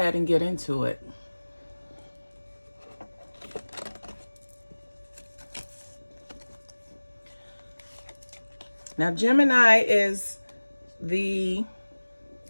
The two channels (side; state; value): both; inverted; correlation -1.00